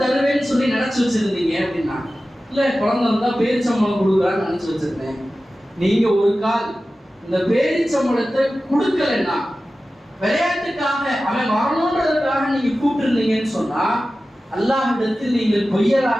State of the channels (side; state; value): both; normal; correlation 0.95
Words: தருவேன்னு சொல்லி நினைச்சு வச்சிருந்தீங்க அப்படின்னா, இல்ல குழந்தை வந்தா பேரிச்சம்பழம் கொடுக்குறான்னு நினைச்சு வச்சிருந்தேன். நீங்க ஒரு கால் இந்த பேரிச்சம்பழத்தை கொடுக்கலன்னா, விளையாட்டுக்காக அவன் வரணுன்றதுக்காக நீங்க கூப்பிட்டுருந்தீங்கன்னு சொன்னா அல்லாஹ்விடத்தில் நீங்கள்